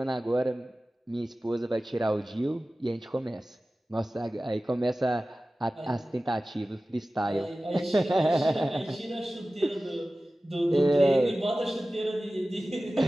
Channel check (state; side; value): normal; both; correlation 0.96